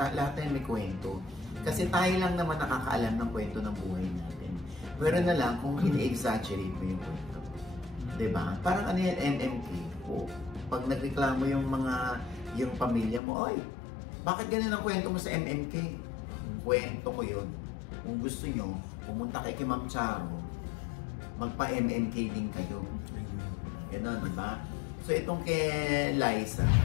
tayo may kwento. Kasi tayo lang naman nakakaalam ng kwento ng buhay natin. Pero na lang kung ini-exaggerate mo yung kwento. Diba? Parang ano yan, MMK. O, pag nagreklamo yung pamilya mo, oy, bakit ganun ang kwento mo sa MMK? Kwento ko yun. Kung gusto nyo, pumunta kay Ma'am Charo, magpa-MMK din kayo. Ganun, diba? So itong kay Liza,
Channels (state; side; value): drops out; right; at 13.2 s